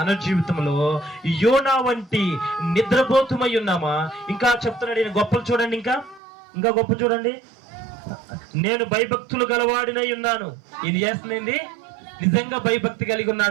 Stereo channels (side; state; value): left; drops out; at 6.2 s